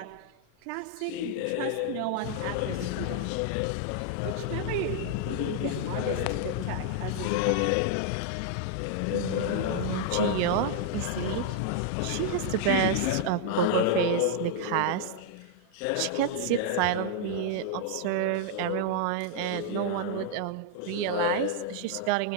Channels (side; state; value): both; different; correlation -0.01